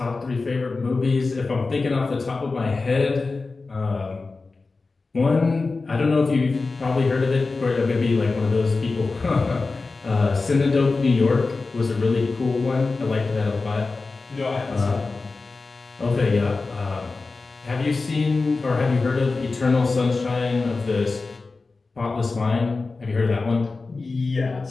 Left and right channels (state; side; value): quieter; right; 3.9 dB